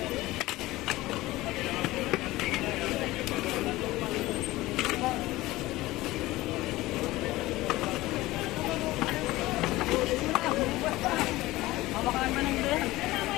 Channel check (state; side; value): quieter; right; 18.4 dB